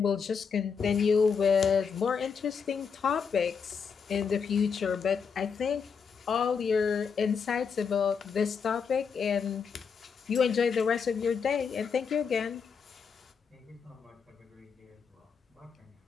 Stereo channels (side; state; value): right; quieter; 6.1 dB